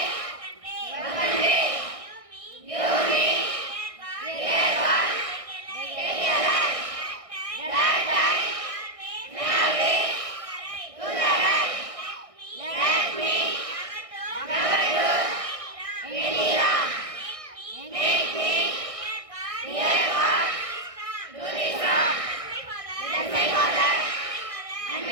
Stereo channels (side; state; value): left; late; 1.6 ms